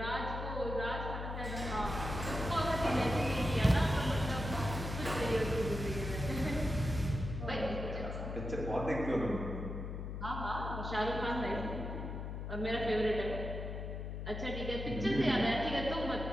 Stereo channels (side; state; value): left; noise; hum, 5 dB below the sound